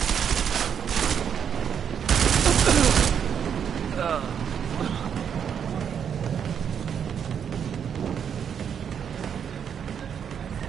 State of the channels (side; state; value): left; quieter; 7.9 dB